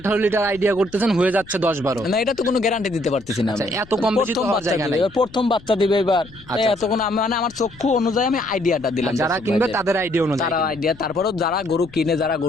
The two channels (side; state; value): left; noise; rumble, 22 dB below the sound